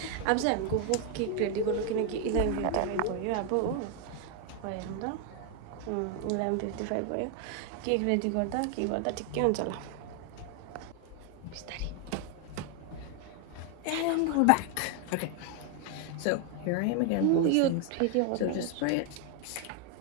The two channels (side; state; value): both; different; correlation 0.01